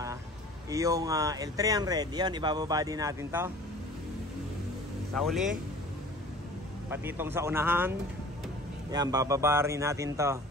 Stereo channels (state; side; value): normal; both; correlation 0.45